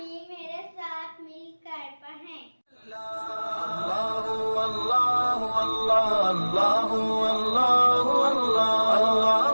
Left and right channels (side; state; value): both; inverted; correlation -1.00